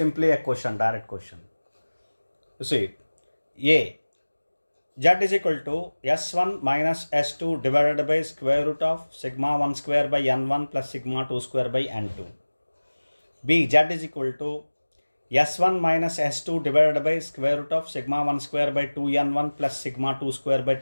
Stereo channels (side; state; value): both; inverted; correlation -1.00